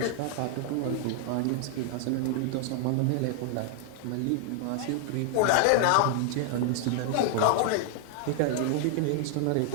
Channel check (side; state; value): both; different; correlation 0.00